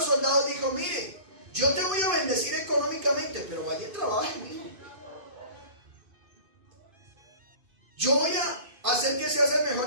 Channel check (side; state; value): left; late; 2.5 ms